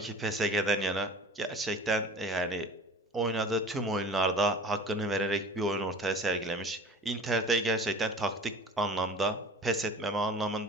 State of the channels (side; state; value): both; normal; correlation 0.42